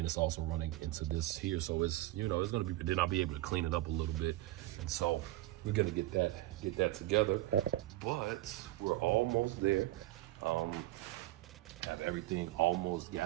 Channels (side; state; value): left; quieter; 16.6 dB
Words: it's also running into this here. So it's, you know, it's gonna be, then I'll be able to clean it up a little bit. And so we're gonna get that together, but we're almost there. Have everything almost